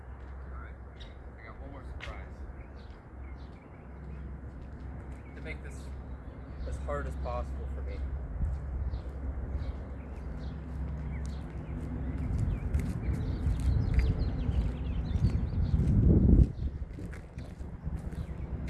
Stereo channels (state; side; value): identical; both; correlation 1.00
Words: Make this as hard as possible for me.